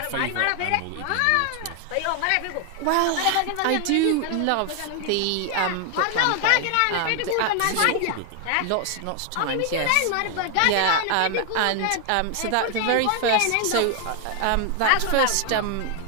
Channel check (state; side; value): different; both; correlation 0.00